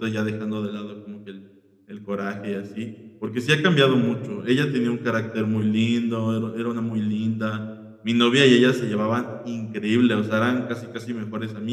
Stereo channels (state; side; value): identical; both; correlation 1.00